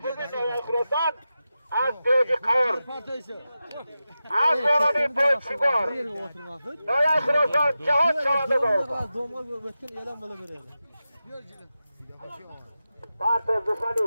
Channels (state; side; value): inverted; both; correlation -0.92